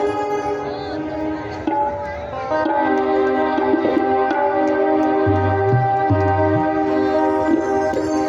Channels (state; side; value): identical; both; correlation 1.00